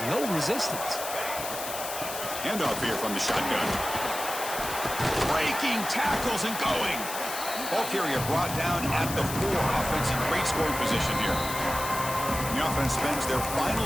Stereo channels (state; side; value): noise; left; hiss, 7 dB below the sound